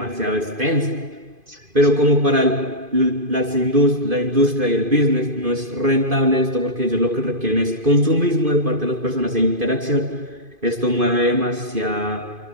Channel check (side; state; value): left; late; 2.5 ms